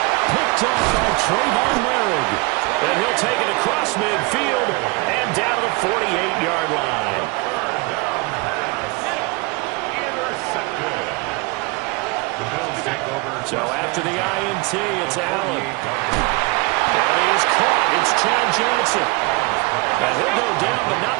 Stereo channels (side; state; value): left; quieter; 26.2 dB